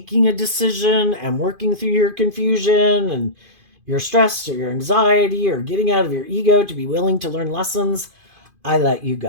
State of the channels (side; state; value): left; late; 2.5 ms